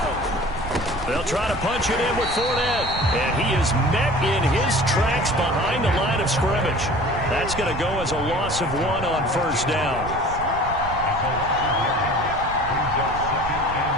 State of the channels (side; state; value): right; noise; rumble, 10 dB below the sound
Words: They'll try to punch it in with Fournette. And he is met in his tracks behind the line of scrimmage. That's going to go as a loss of 1 on 1st down.